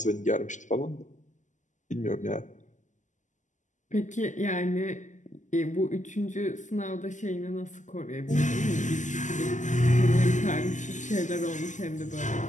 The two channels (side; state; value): right; late; 0.36 ms